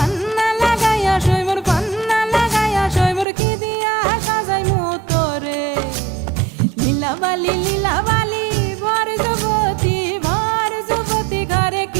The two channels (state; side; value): drops out; left; at 3.2 s